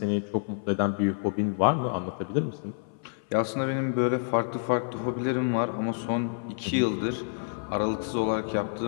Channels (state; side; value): silent; right; 58 dB below the other